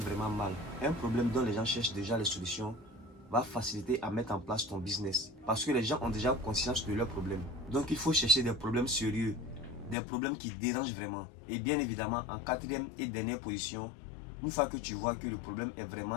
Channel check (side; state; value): right; drops out; at 10.0 s